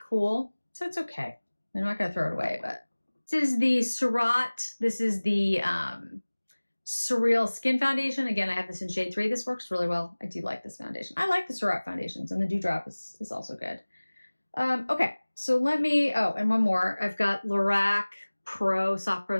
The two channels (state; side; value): inverted; both; correlation -1.00